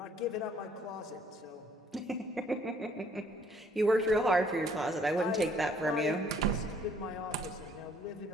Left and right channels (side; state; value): both; normal; correlation 0.62